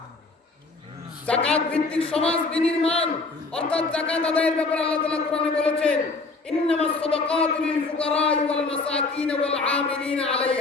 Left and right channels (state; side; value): quieter; right; 3.7 dB